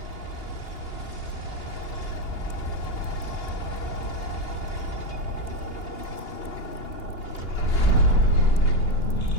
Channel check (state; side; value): late; right; 2.8 ms